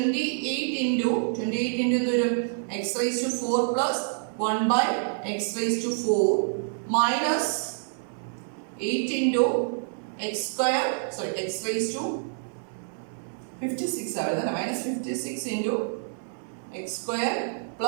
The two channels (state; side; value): silent; left; digital silence